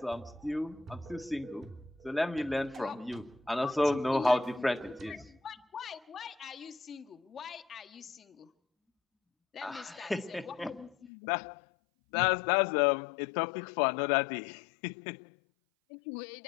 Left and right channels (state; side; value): drops out; right; at 11.1 s